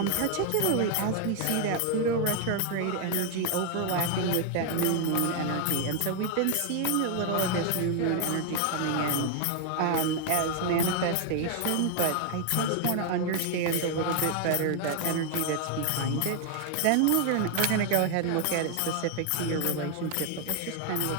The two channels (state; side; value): different; both; correlation 0.00